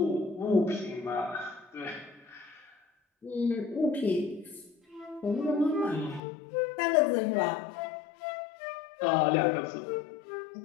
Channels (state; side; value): drops out; right; at 6.2 s